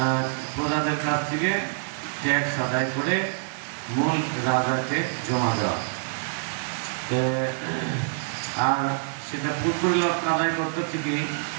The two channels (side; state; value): left; silent; 61 dB below the other